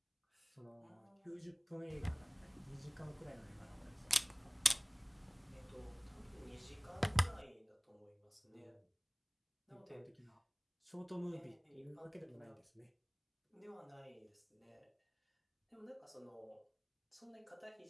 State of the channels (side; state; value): both; identical; correlation 1.00